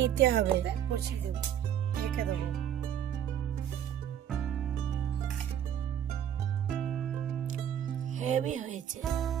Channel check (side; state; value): left; quieter; 9.8 dB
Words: নিতে হবে। বসিয়ে দেবো, ঢেকে দেবো। হেভি হয়েছে।